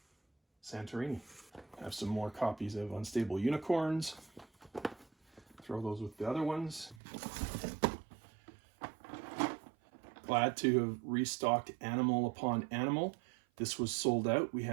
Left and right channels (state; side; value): drops out; left; at 7.0 s